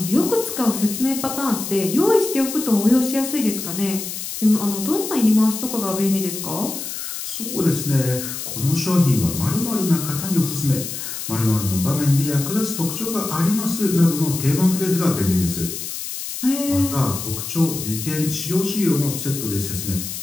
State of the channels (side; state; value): left; noise; hiss, 7 dB below the sound